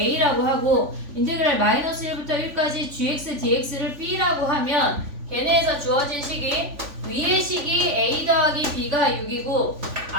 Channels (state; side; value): late; left; 3.5 ms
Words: 하고 인테그랄 마이너스 1부터 1까지 gx dx를 b라고 하면 걔네에서 주어진 식이 위의 식이 a 더하기 b가 6이고